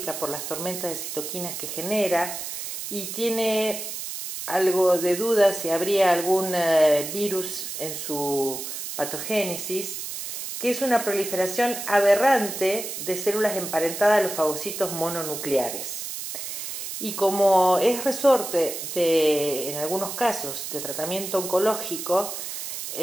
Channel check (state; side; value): noise; right; hiss, 7 dB below the sound